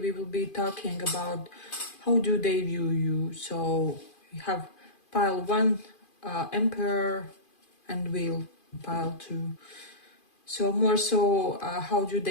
will be talking about how do they view you. So we have pile 1, Emperor, and Wheel, pile 2. So more so, how do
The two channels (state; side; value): late; right; 2.4 ms